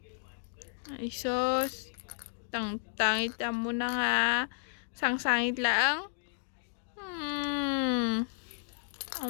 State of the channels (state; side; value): silent; right; digital silence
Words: Ay, sos. Tangit mo na nga. Sangsangit lang.